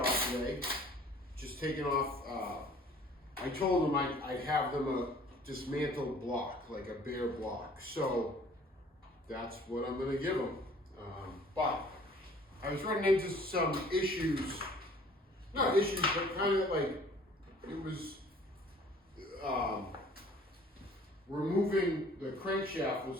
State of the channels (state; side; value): normal; both; correlation 0.53